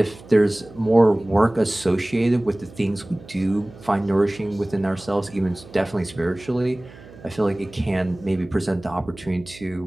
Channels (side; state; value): right; noise; hum, 20 dB below the sound